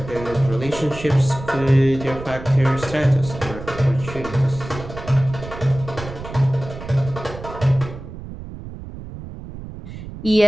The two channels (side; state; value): right; noise; rumble, 12 dB below the sound